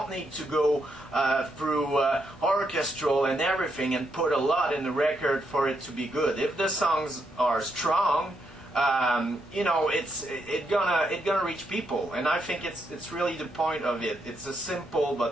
need to go through orchestral and everything and put a lot in the record for it to be good. If the songs are strong, you know, it's gonna reach people, and I think it's really the point of it. It's a simple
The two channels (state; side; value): normal; both; correlation 0.79